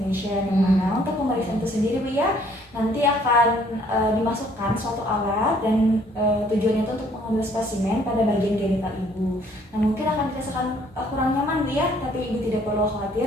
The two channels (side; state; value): both; normal; correlation 0.62